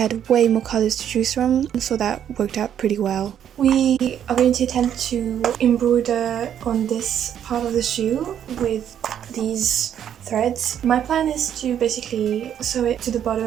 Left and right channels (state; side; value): quieter; left; 9.6 dB